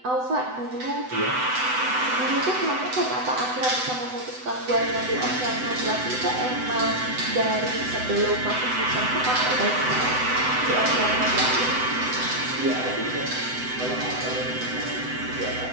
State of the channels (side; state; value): left; late; 7.9 ms